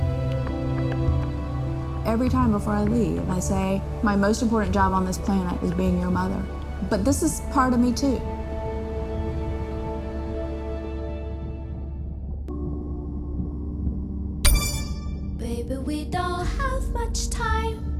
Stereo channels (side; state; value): both; identical; correlation 1.00